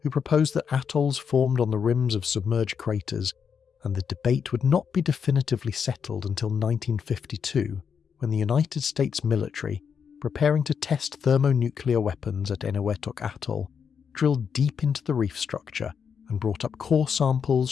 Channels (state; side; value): quieter; right; 6.8 dB